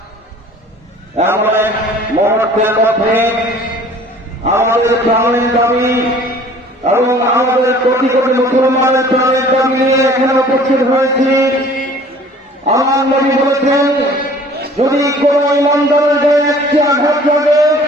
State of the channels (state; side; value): normal; both; correlation 0.50